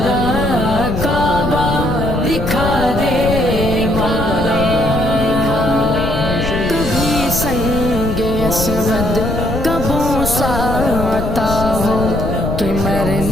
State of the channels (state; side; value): noise; left; rumble, 4 dB below the sound